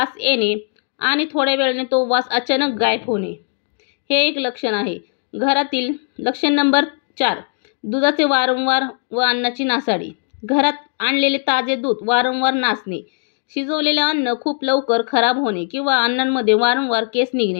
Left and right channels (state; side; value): silent; right; 66 dB below the other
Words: येणे आणि थोड्या वेळाने तो वास अचानक गायब होणे, हे एक लक्षण आहे. घरातील लक्षण नंबर 4, दुधाचे वारंवार व अन्नाची नासाडी. घरात आणलेले ताजे दूध वारंवार नासणे, शिजवलेले अन्न खूप लवकर खराब होणे किंवा अन्नांमध्ये वारंवार केस